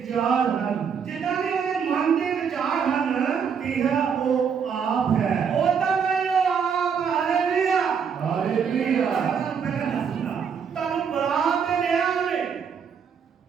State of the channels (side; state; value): left; quieter; 6.8 dB